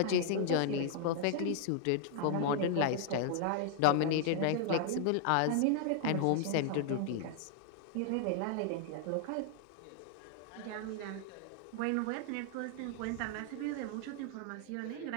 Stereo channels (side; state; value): both; different; correlation 0.00